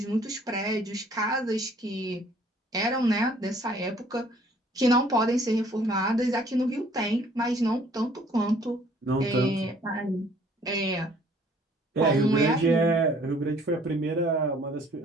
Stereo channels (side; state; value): both; normal; correlation 0.58